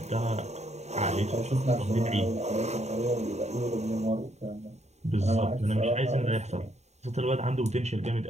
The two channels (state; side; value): late; left; 0.32 ms